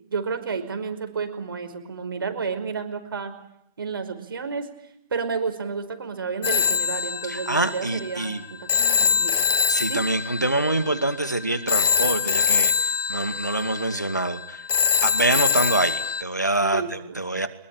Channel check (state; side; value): inverted; both; correlation -0.47